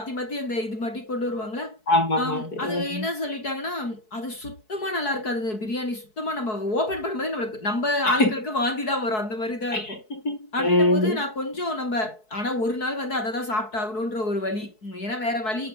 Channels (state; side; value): late; right; 4.7 ms